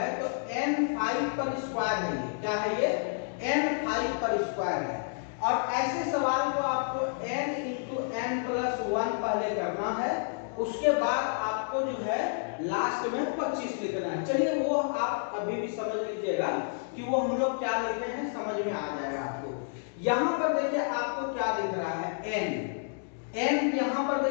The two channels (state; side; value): silent; right; digital silence